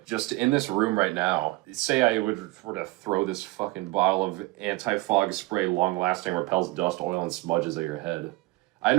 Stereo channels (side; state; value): left; quieter; 20.7 dB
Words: just in this room right now. Say I were to throw this fucking bottle of anti-fog spray, long-lasting, repels dust, oil, and smudges at your head. I